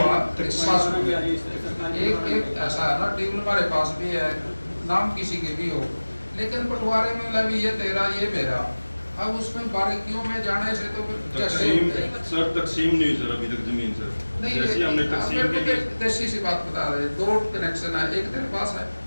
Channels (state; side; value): inverted; both; correlation -1.00